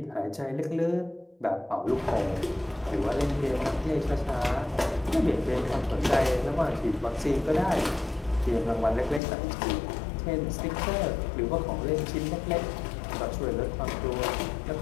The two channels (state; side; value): drops out; right; at 9.2 s